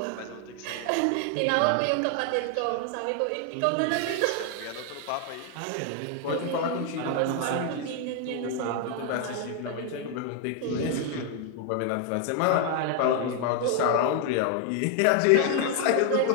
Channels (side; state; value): both; different; correlation 0.00